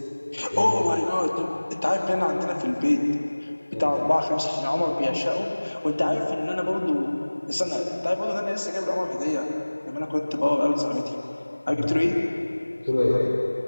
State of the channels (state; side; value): inverted; both; correlation -1.00